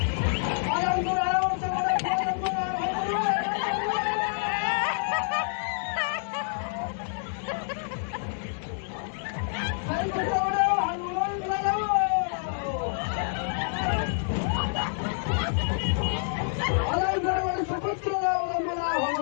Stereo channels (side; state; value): right; silent; digital silence